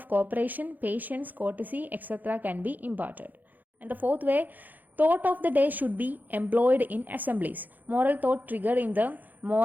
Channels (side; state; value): left; late; 0.084 ms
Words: cooperation, patience, courtesy, etc. can be imparted. And the fourth way, thought of the day should be employed in assemblies. Moral thought triggered in the